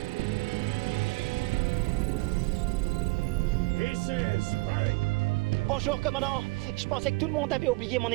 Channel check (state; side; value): quieter; left; 25.1 dB